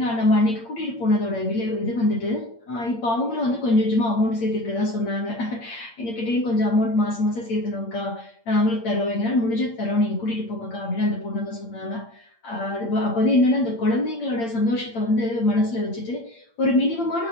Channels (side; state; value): right; late; 8.7 ms